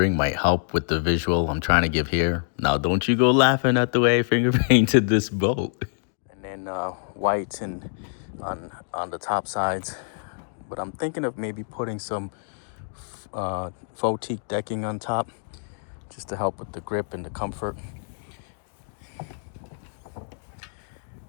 might help with the visual I'm trying to give here. Now, don't you go laughing at the way I finger painted this boat. And then white and on the top sides. But I'm thinking of maybe putting some faux teak decking on top, just to help with the grip and the comfort.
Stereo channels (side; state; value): right; silent; digital silence